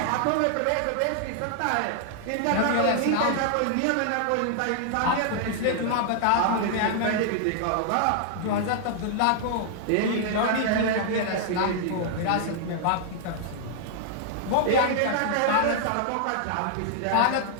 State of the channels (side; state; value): both; different; correlation -0.01